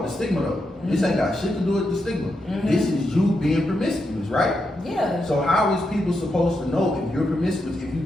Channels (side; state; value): both; normal; correlation 0.84